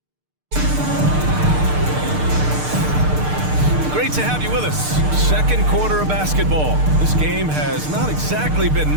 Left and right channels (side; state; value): left; late; 6.6 ms